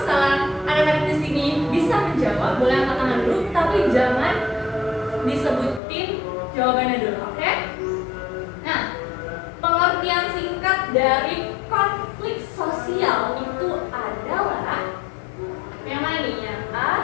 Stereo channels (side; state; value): right; drops out; at 5.8 s